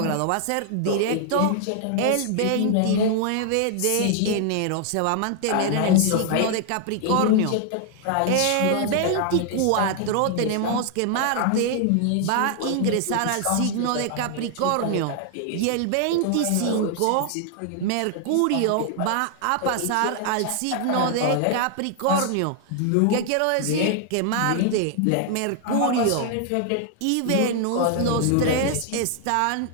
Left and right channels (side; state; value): both; different; correlation 0.00